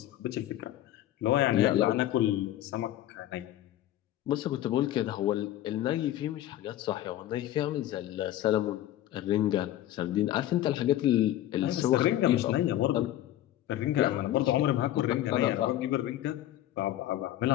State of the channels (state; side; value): quieter; right; 13.4 dB